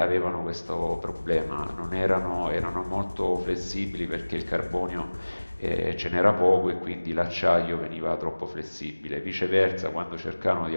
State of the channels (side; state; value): both; inverted; correlation -1.00